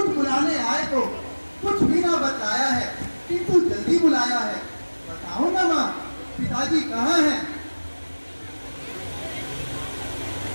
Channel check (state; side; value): inverted; both; correlation -1.00